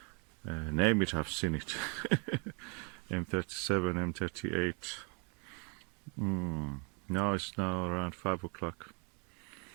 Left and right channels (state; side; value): quieter; left; 35.4 dB